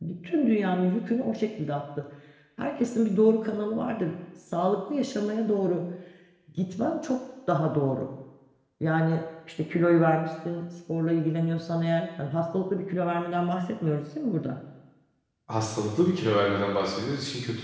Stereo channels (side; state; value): both; identical; correlation 1.00